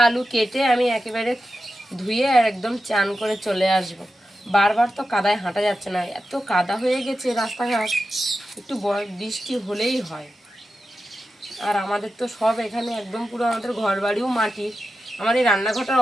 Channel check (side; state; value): both; normal; correlation 0.91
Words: আলু কেটে আমি একেবারে ধুয়ে আর একদম চান করে চলে আসব। বারবার তো কাদায় হাঁটা যাচ্ছে না, এত কাদা হয়ে গেছে রাস্তাঘাট, একটু বৃষ্টি হলেই হয়। আর আমাদের তো সব এখানে একদম পুরো আমাদের ঘর বাড়িও মাটির। আমার এই